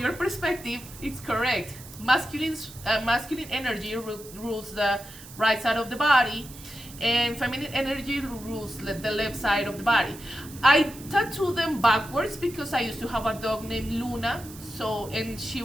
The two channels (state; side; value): noise; right; hiss, 17 dB below the sound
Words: perspective, it's correct. Masculine energy rules the right side of the body, and feminine energy rules the left side of the body. I tattoo them backwards because I used to have a dog named Luna. And she